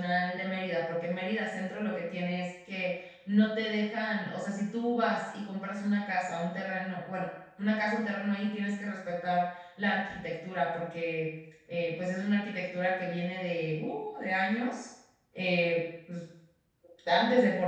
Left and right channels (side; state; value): both; identical; correlation 1.00